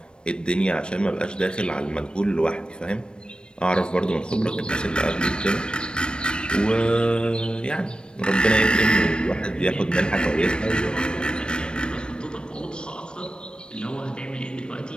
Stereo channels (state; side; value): late; right; 0.053 ms